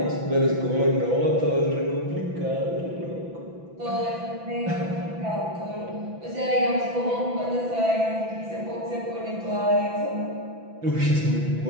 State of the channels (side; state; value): left; late; 6.0 ms